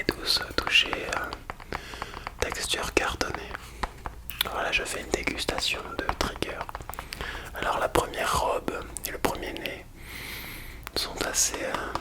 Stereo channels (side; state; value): both; identical; correlation 1.00